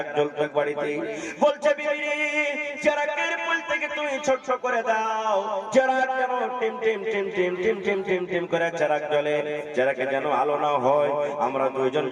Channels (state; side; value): identical; both; correlation 1.00